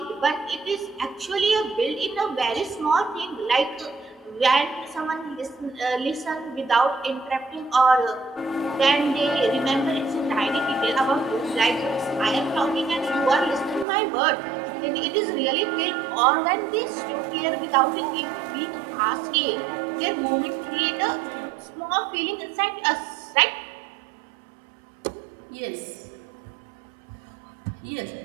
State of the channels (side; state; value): left; drops out; at 13.9 s